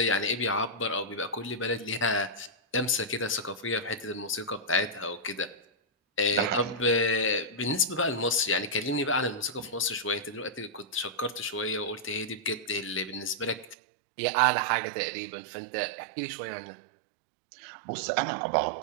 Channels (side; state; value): left; drops out; at 13.8 s